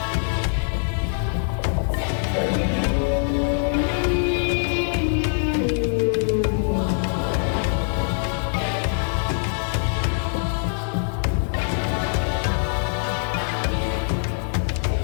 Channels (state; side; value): silent; right; 63 dB below the other